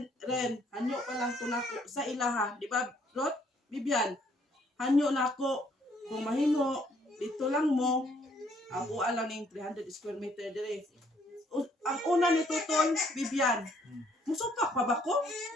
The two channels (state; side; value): normal; both; correlation 0.66